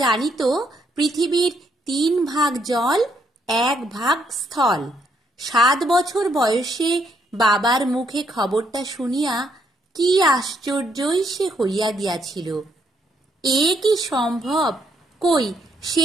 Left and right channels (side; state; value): both; normal; correlation 0.73